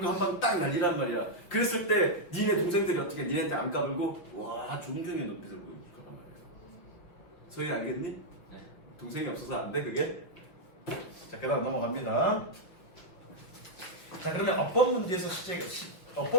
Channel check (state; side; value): late; right; 5.7 ms